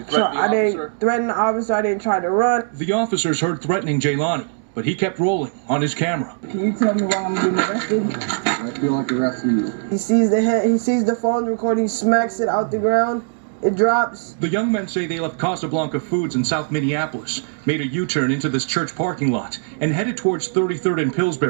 threaten the officer? I didn't threaten the officer. I didn't try to run. The officers heard threatening Jailani, but he kept rolling on his camera. Can you tell me why I'm getting arrested? I feel like arresting you. He sees the head. He sees the phone recording. He smacks it out the ground. It drops. The young men say they left Casablanca Foods in South Minneapolis, made a U-turn into this church parking lot, and headed towards 33rd and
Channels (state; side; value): silent; left; digital silence